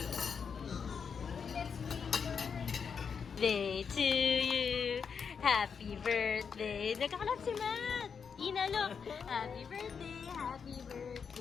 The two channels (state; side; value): quieter; right; 6.4 dB